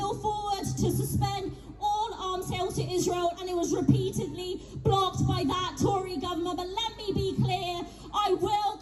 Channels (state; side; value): identical; both; correlation 1.00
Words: forward to suspend all arms sales to Israel, and it was repeatedly blocked by that Tory government. But let me be clear, I will